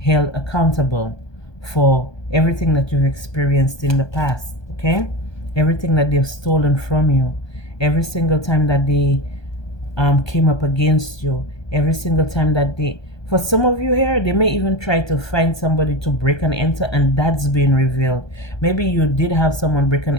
accountable for everything that you've experienced in the past. Okay, everything that they've stolen from you, every single time that they came up against you, every single time that they, for some of you here, they may even try to find somebody to break and enter, and that's been revealed. Maybe you did have someone break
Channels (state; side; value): late; right; 1.2 ms